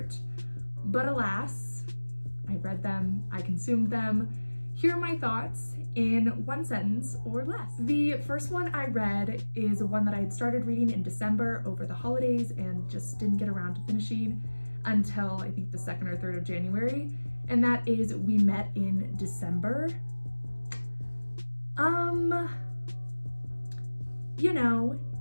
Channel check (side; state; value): both; inverted; correlation -1.00